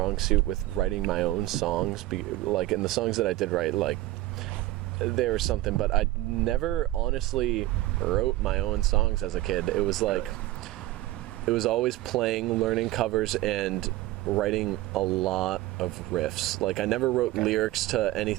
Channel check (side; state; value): left; quieter; 16.9 dB